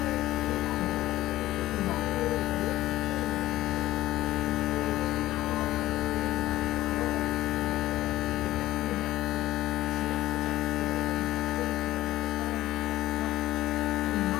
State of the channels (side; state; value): right; quieter; 15.6 dB